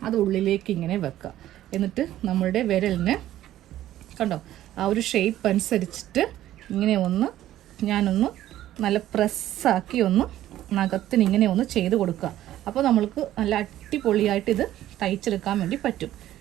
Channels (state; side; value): quieter; left; 13.3 dB